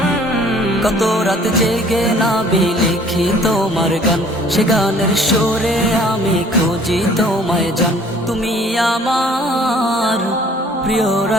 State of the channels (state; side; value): normal; both; correlation 0.54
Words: কত রাত জেগে নবী লিখি তোমার গান, সে গানের সুরে আমি খুঁজি তোমায় জান। তুমি আমার প্রিয়